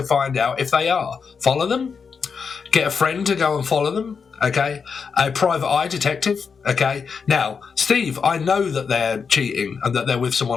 find out if they are? Follow them? Get a friend to go and follow them? Okay, a private eye detective. Okay, now, Steve, I know that they're cheating and that they're with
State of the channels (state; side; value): quieter; right; 5.8 dB